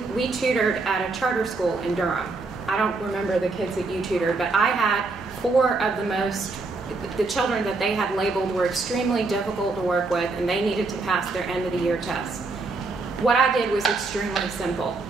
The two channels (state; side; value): quieter; left; 3.7 dB